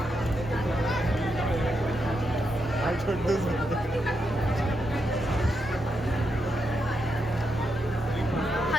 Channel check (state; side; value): normal; both; correlation 0.83